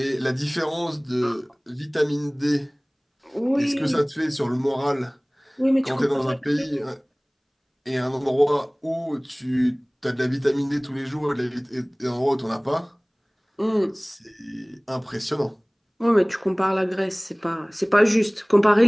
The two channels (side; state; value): both; identical; correlation 1.00